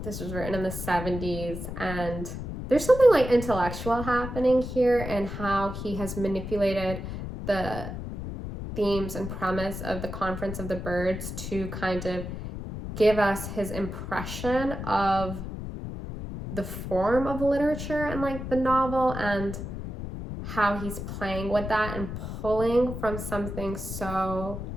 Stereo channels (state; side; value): noise; left; rumble, 7 dB below the sound